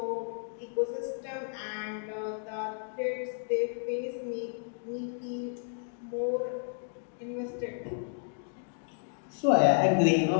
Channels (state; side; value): silent; right; digital silence